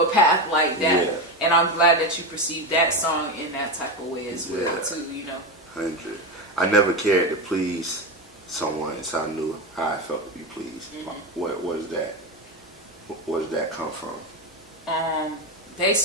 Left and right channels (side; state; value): both; normal; correlation 0.17